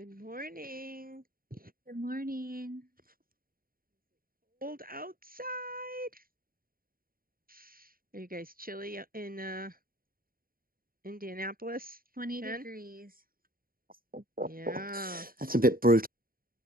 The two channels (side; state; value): left; late; 0.42 ms